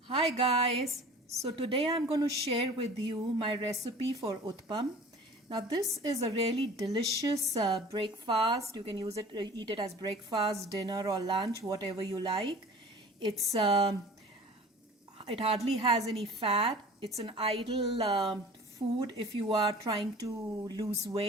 Hi guys, so today I'm going to share with you my recipe for Uttapam. Now this is a really delicious breakfast. You can eat it as breakfast, dinner or lunch, whatever you like. It hardly has any fat. It's an ideal food if you are trying to lose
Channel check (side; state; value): both; normal; correlation 0.44